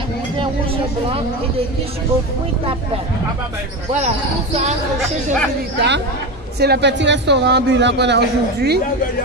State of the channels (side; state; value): both; normal; correlation 0.20